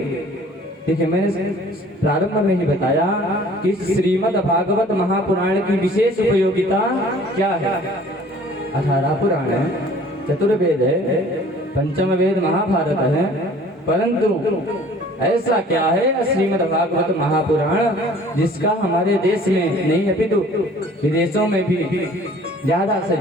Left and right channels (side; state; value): both; normal; correlation 0.51